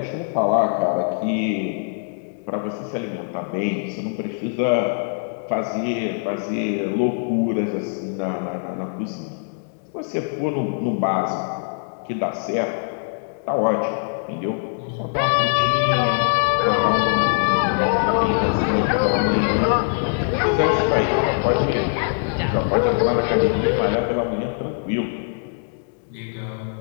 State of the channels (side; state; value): right; silent; digital silence